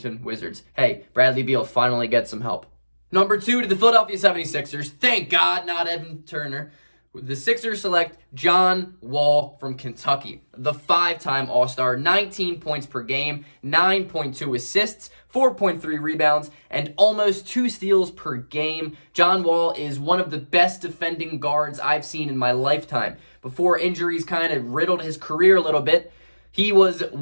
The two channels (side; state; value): both; inverted; correlation -1.00